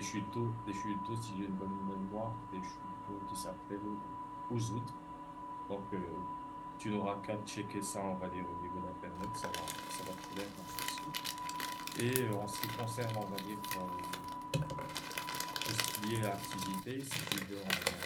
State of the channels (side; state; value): both; identical; correlation 1.00